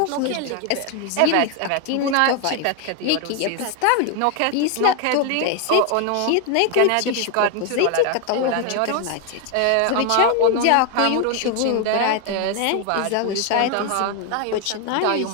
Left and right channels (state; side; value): different; both; correlation 0.01